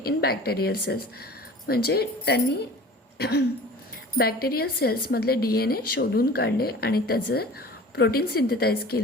in bacterial cells. म्हणजे त्यांनी बॅक्टेरियल सेल्समधले DNA शोधून काढले आणि त्याचं प्रोटीन सिंथेसाइज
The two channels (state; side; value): normal; both; correlation 0.42